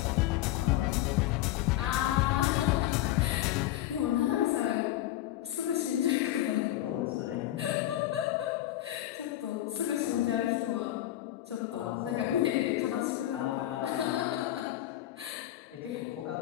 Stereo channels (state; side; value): quieter; right; 14.0 dB